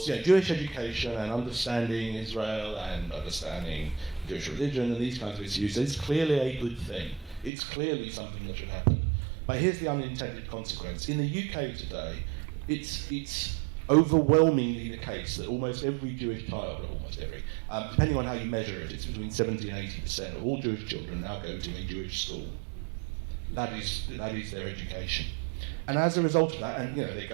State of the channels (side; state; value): left; drops out; at 7.5 s